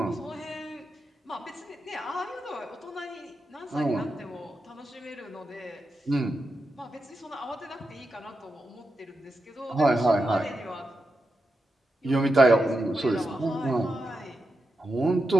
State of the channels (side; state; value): both; normal; correlation 0.88